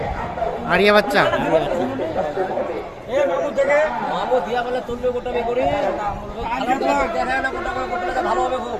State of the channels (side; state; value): both; identical; correlation 1.00